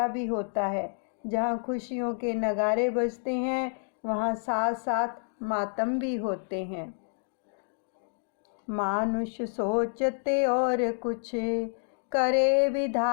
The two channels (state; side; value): silent; right; digital silence